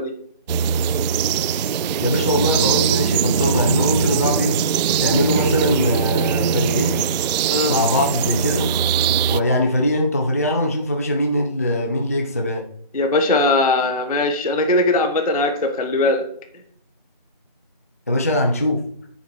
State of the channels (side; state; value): both; inverted; correlation -0.36